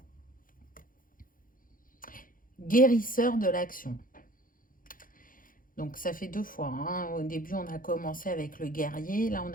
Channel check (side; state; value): right; late; 0.40 ms